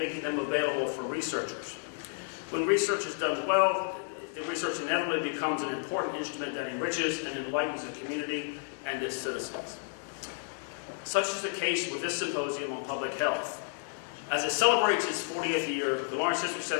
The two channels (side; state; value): right; silent; 57 dB below the other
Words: them available for researchers. When research is done well, the research inevitably becomes an important instrument that enriches and enlightens the community and its citizens. Such is the case with this symposium on public health. As it celebrates its 40th year, the Lawrence History